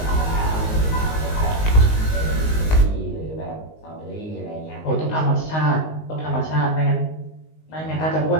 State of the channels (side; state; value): right; late; 19 ms